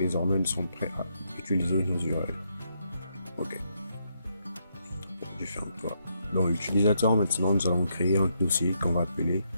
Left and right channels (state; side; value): inverted; both; correlation -0.78